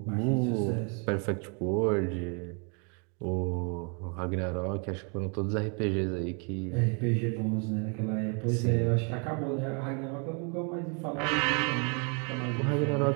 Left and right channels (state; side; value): quieter; left; 36.8 dB